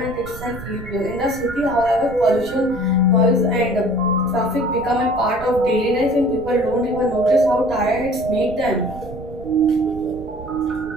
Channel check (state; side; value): noise; right; rumble, 14 dB below the sound